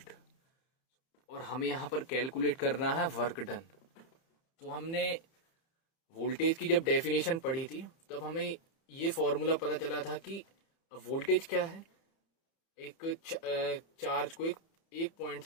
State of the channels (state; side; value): late; right; 30 ms